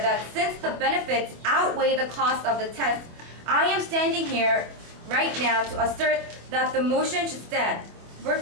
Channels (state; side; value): late; left; 25 ms